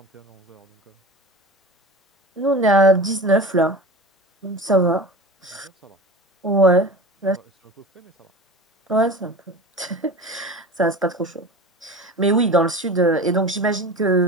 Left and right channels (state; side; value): normal; both; correlation 0.33